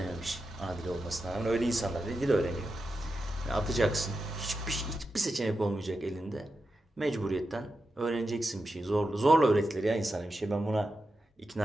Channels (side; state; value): both; normal; correlation 0.89